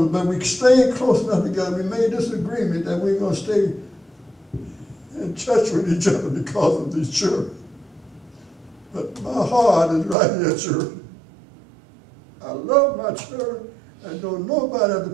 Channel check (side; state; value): left; drops out; at 10.2 s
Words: us. But we stayed close enough together. We made this agreement that we're going to stay in touch with each other because of these children. But my heart is right here, children. I love my children and don't nobody have to